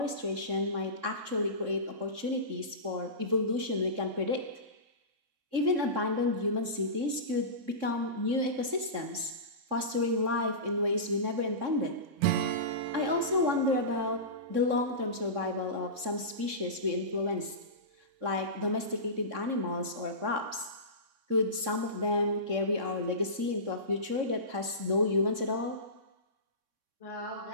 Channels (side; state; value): left; late; 3.6 ms